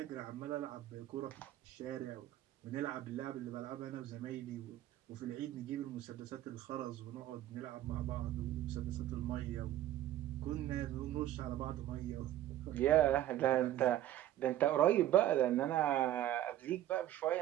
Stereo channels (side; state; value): left; quieter; 13.1 dB